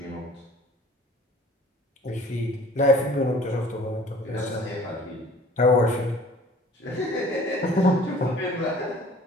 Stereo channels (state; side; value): normal; both; correlation 0.50